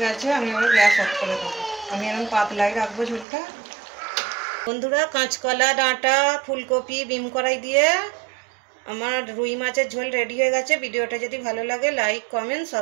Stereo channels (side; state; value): left; drops out; at 3.2 s